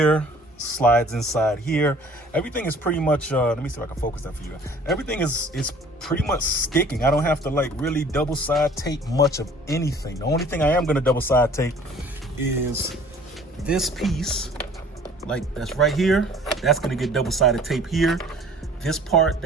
slides inside here. Everything is pretty much let me see if I can focus that for you. Everything is pretty much sticking. I don't have to like really double side tape much of anything. The only thing I am going to double side tape is this piece, like that's right here. That's going to get double sided tape here. This part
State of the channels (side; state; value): both; normal; correlation 0.51